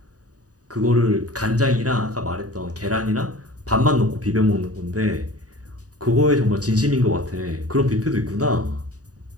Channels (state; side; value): late; left; 0.67 ms